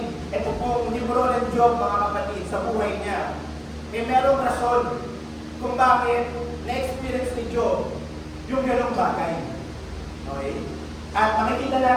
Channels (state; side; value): identical; both; correlation 1.00